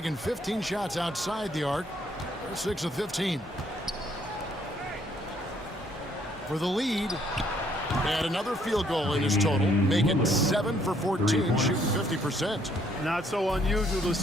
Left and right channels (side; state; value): both; normal; correlation 0.67